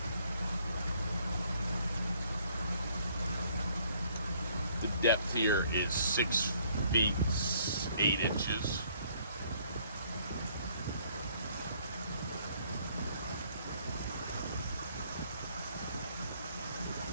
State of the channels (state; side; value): inverted; both; correlation -0.63